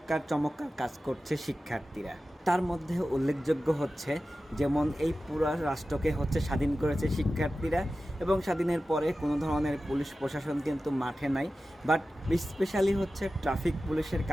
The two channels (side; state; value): both; normal; correlation 0.94